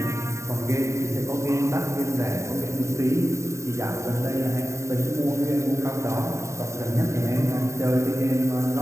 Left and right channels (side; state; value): left; late; 0.14 ms